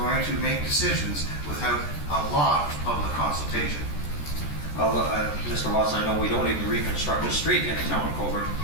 to make decisions without a lot of public consultation. Well, Mr. Watson, I know we don't even reconstruct a street in the town of Cobourg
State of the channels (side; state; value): right; late; 14 ms